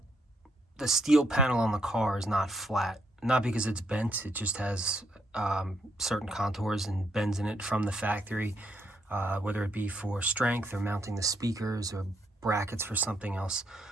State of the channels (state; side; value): normal; both; correlation 0.75